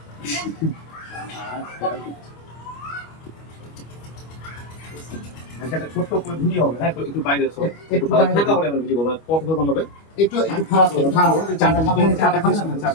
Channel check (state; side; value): late; right; 25 ms